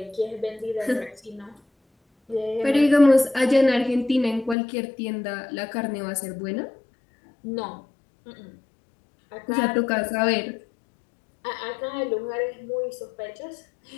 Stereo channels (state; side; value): drops out; right; at 4.5 s